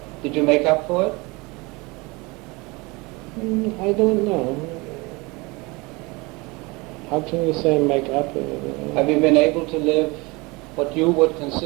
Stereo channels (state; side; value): quieter; left; 25.3 dB